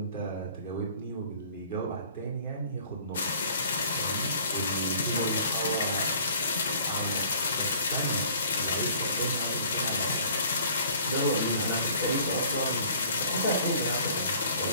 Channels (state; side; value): inverted; both; correlation -0.53